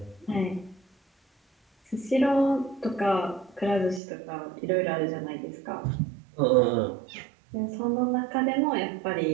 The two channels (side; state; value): left; drops out; at 4.0 s